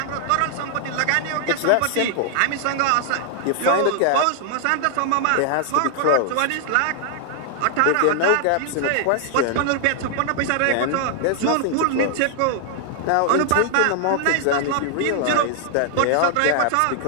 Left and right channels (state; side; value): different; both; correlation 0.00